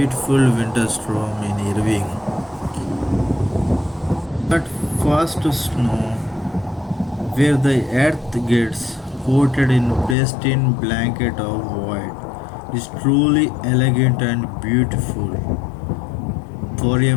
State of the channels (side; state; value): right; drops out; at 10.2 s